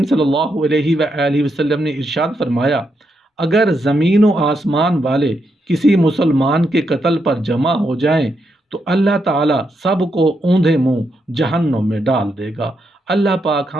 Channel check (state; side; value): normal; both; correlation 0.81